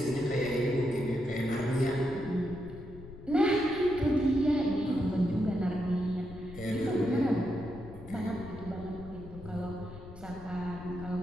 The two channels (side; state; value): left; noise; rumble, 15 dB below the sound